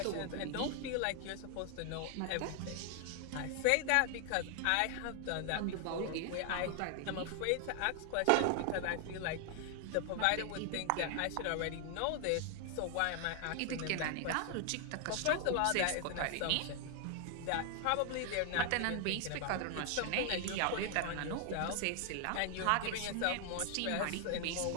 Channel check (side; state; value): both; different; correlation 0.00